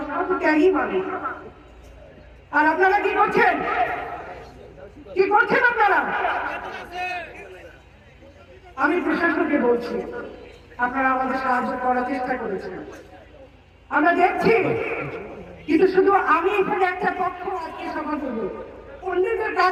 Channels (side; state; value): both; identical; correlation 1.00